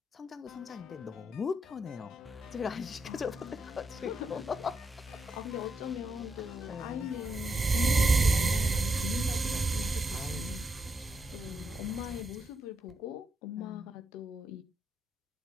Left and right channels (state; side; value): normal; both; correlation 0.82